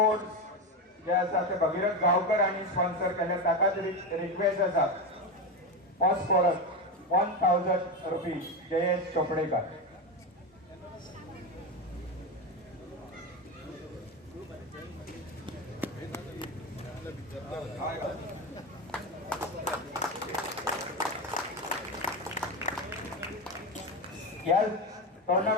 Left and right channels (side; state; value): both; normal; correlation 0.16